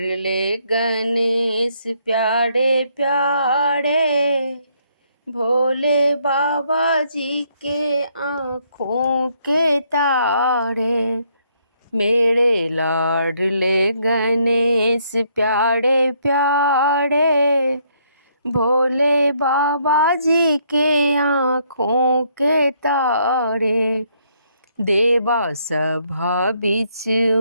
गणेश प्यारे प्यारे, भोले बाबा जी के आँखों के तारे। मेरे लाडले गणेश प्यारे प्यारे, भोले बाबा जी के आँखों के तारे। देवा सभा बीच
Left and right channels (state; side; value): inverted; both; correlation -0.71